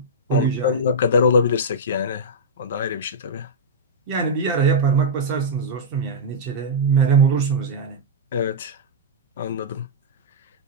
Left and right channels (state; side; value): normal; both; correlation -0.10